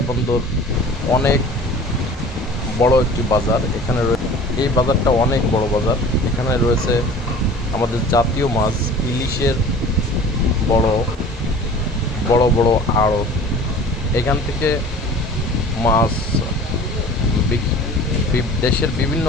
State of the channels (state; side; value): normal; both; correlation 0.43